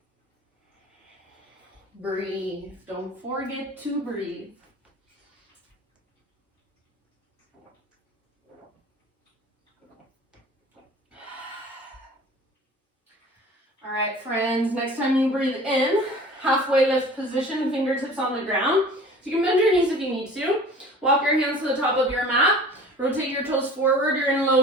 Breathe. Don't forget to breathe. All right, friends, next time you breathe in, halfway lift position, fingertips on the ground. So you can bend your knees if you need to. Walk your hands to the top of your mat. Rotate your toes forward. You're in low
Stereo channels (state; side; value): normal; both; correlation 0.44